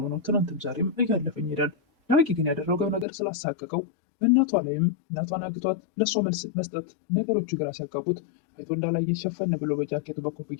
ነው ትናንትም ዛሬም እያለፈኝ ሄዳል። ዳጊ ግን ያደረገው ነገር ስላሳቀቀው በእናቷ ላይም እናቷን አግቷት ለእሷ መልስ መስጠት ነገሮቹ ግራ ሲያጋቡት አይቶ እንዳላየ ሸፈን ብሎ በጃኬቱ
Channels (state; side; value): drops out; right; at 3.1 s